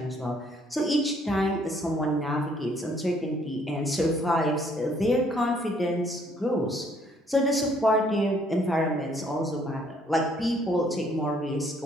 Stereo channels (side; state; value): both; normal; correlation 0.64